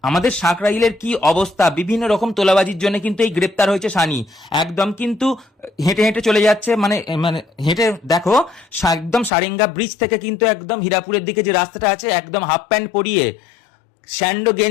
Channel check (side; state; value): right; drops out; at 9.3 s